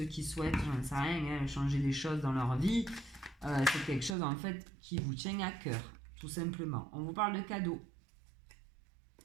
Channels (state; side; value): drops out; left; at 4.2 s